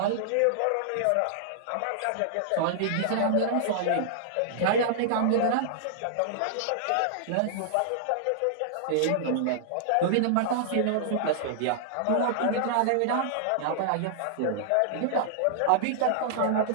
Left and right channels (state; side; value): different; both; correlation -0.01